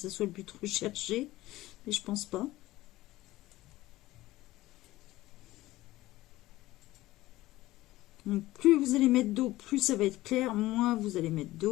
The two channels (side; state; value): right; quieter; 17.1 dB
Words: soit le but recherché, mais je pense pas. Donc, plus vous allez mettre d'eau, plus ça va être clair. Moins vous allez mettre